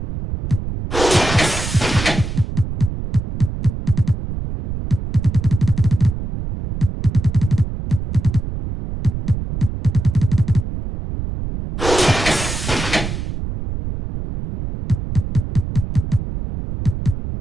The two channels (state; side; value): noise; right; rumble, 6 dB below the sound